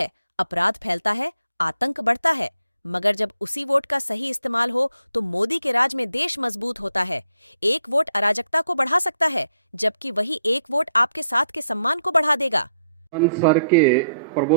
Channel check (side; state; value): both; inverted; correlation -0.74